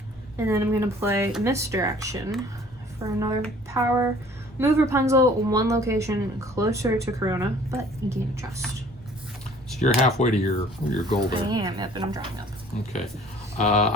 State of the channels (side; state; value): both; normal; correlation 0.53